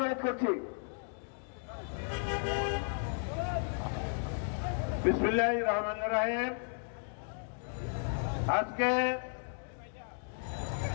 করছি। বিসমিল্লাহির রহমানির রহিম। আজকে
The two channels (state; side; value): silent; right; 55 dB below the other